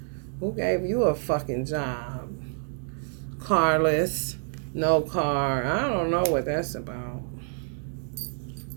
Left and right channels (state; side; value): silent; left; 60 dB below the other